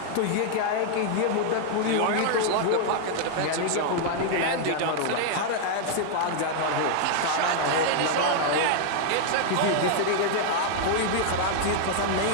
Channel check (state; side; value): different; both; correlation 0.00